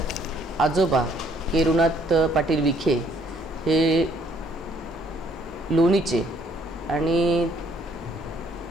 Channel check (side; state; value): both; normal; correlation 0.64